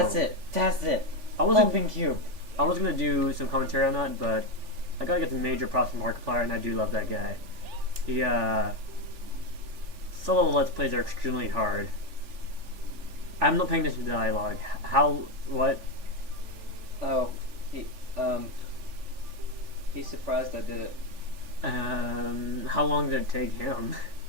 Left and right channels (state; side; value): late; left; 3.4 ms